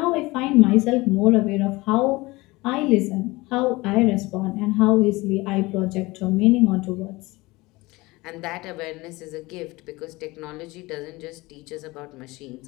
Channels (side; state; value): right; quieter; 21.7 dB